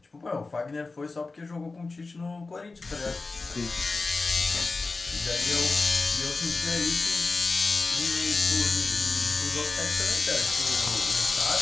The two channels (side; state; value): right; quieter; 3.7 dB